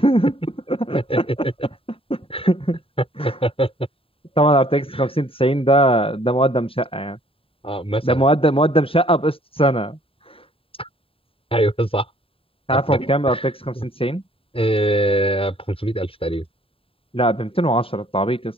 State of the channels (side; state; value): right; late; 0.27 ms